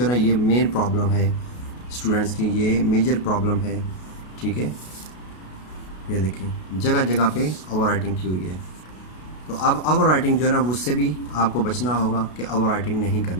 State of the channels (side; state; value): right; late; 33 ms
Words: ना ये मेन प्रॉब्लम है स्टूडेंट्स की, ये मेजर प्रॉब्लम है। ठीक है, ये देखें जगह जगह पे ओवर राइटिंग की हुई है। तो अब ओवर राइटिंग जो है ना उससे भी आपको बचना होगा कि ओवर राइटिंग नहीं